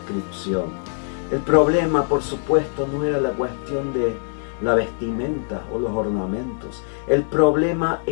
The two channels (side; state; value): right; silent; 64 dB below the other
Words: El problema, por supuesto, no era la cuestión de la vestimenta o los ornamentos. El problema